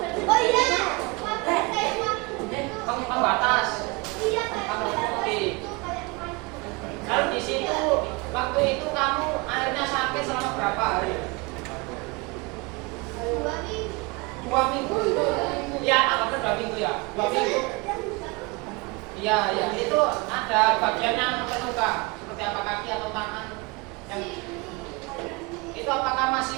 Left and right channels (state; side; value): quieter; left; 27.0 dB